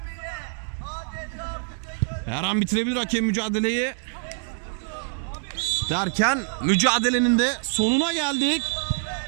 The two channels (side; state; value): left; silent; digital silence